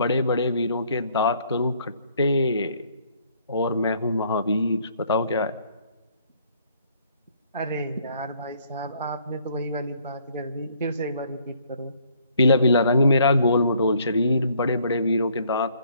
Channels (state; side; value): inverted; both; correlation -0.64